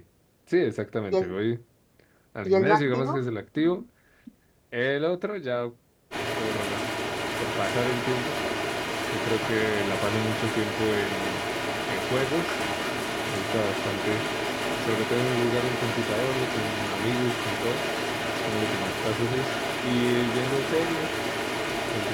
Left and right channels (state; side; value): identical; both; correlation 1.00